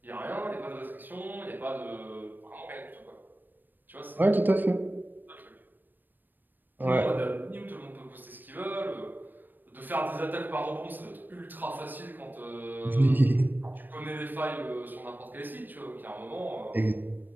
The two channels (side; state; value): left; late; 0.091 ms